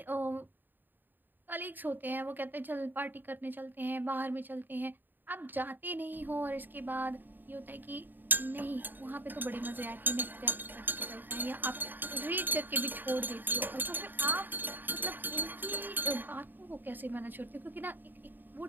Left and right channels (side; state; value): left; late; 0.091 ms